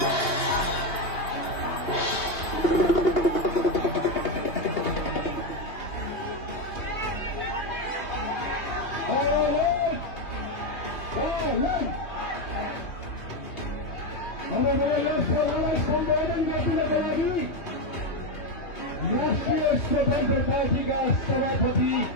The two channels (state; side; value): late; right; 2.8 ms